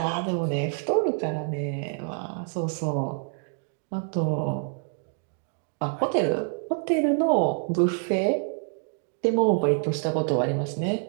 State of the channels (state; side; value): silent; left; 60 dB below the other